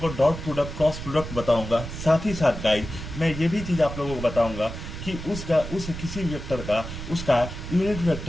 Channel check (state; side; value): noise; right; rumble, 9 dB below the sound